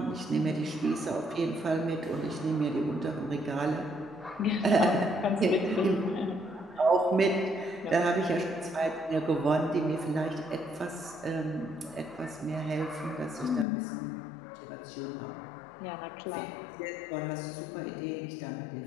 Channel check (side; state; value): right; drops out; at 13.7 s